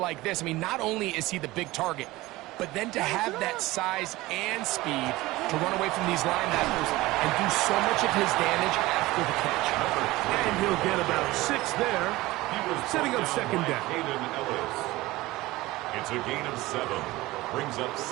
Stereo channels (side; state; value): left; quieter; 19.0 dB